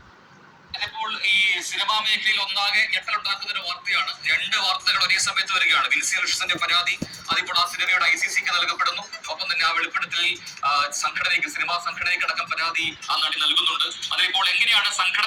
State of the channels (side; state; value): both; identical; correlation 1.00